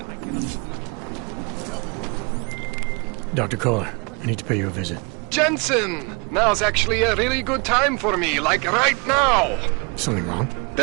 Dr. Kohler, I need to pay you a visit. Jensen! Now's actually a really good time for me, like right now! Something wrong?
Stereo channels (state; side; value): quieter; left; 31.2 dB